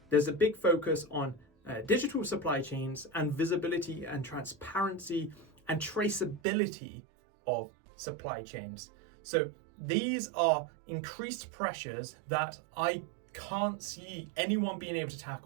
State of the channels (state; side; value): drops out; left; at 6.4 s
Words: there's a big focus on digital supply chains and visibility and transparency and traceability of supply chains. So these are increased pressures that I can't see anyone being able to